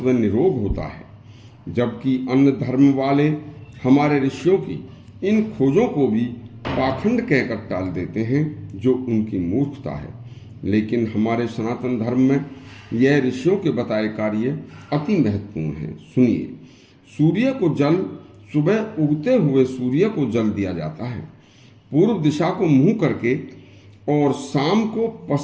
व निरोग होता है। जबकि अन्य धर्म वाले हमारे ऋषियों की इन खोजों को भी पाखंड कहकर टाल देते हैं, जो उनकी मूर्खता है। लेकिन हमारे सनातन धर्म में यह ऋषियों के बताए कार्य अति महत्वपूर्ण है। सुनिए, सूर्य को जल सुबह उगते हुए सूर्य को जल दिया जाता है, पूर्व दिशा को मुंह करके, और शाम को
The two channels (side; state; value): both; identical; correlation 1.00